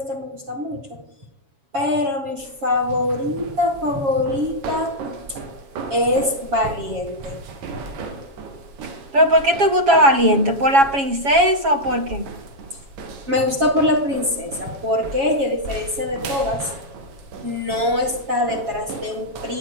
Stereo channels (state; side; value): late; left; 7.2 ms